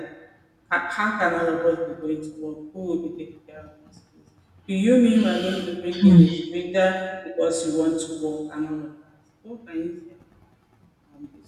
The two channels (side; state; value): both; identical; correlation 1.00